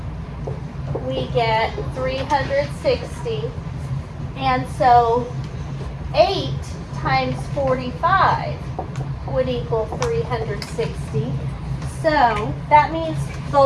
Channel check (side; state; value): both; identical; correlation 1.00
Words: we get 360. And so 8 times 45 would equal 360. So that means